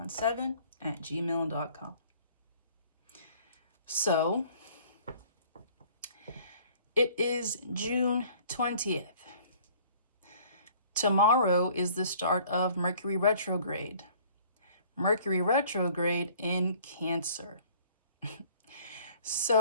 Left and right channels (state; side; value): inverted; both; correlation -0.54